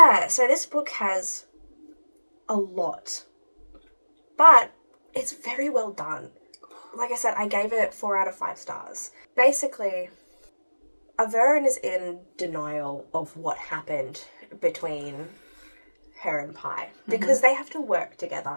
so this book has a lot, but it's very well done. Like I said, I gave it 4 out of 5 stars. Basically, Averin is in denial of what happened between her and Pi, because they have to work together,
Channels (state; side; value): inverted; both; correlation -1.00